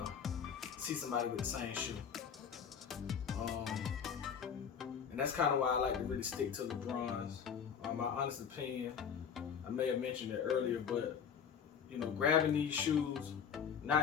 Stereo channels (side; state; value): right; quieter; 7.4 dB